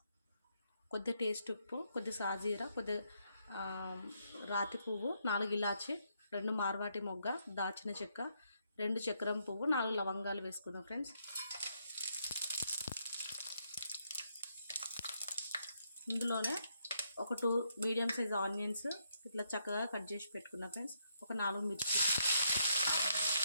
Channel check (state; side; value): inverted; both; correlation -0.76